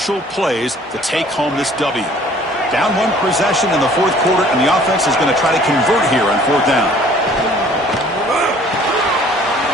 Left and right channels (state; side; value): normal; both; correlation 0.54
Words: plays to take home this W? Down one possession in the fourth quarter, and the offense is going to try to convert here on fourth down.